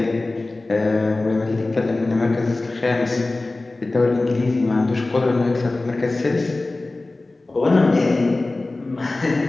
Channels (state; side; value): quieter; right; 3.1 dB